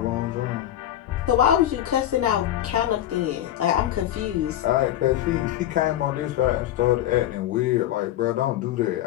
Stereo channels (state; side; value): quieter; right; 12.6 dB